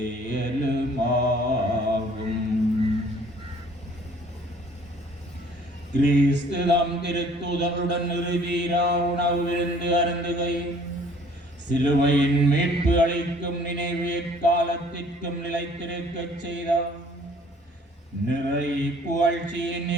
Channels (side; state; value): both; normal; correlation 0.56